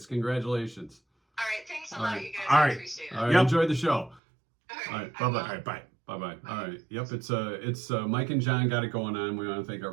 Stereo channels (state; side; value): drops out; left; at 4.2 s